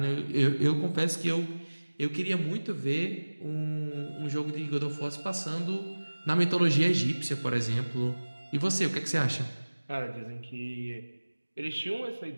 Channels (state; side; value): inverted; both; correlation -1.00